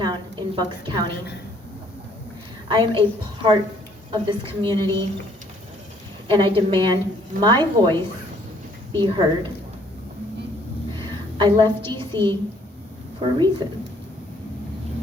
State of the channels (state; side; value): normal; both; correlation 0.62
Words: in Bucks County. I am a part of this community, and I demand my voice be heard. I left D.C. for a reason.